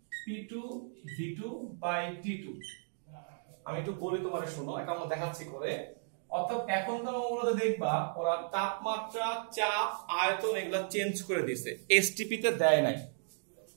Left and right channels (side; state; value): left; silent; digital silence